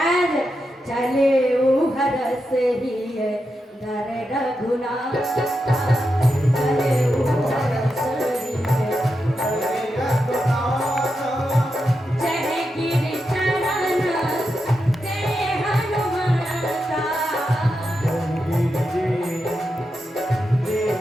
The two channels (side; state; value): both; normal; correlation 0.87